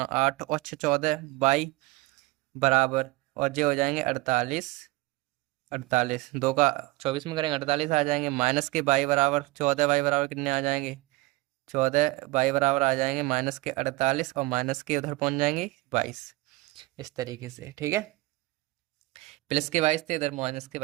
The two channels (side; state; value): left; quieter; 21.1 dB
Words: 8 और 6 14 वाई बराबर, और ये हो जाएंगे 48 48 2 का 24 में करेंगे 48 आ जाएंगे, माइनस के वाई बराबर 14 वाई बराबर कितने आ जाएंगे 14 वाई बराबर आ जाएंगे माइनस के 48 और माइनस के उधर पहुंच जाएंगे 22। इस तरीके से, ठीक है। प्लस के 22 थे, इधर माइनस के